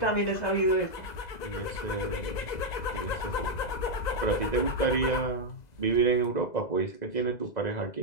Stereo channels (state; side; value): late; right; 2.0 ms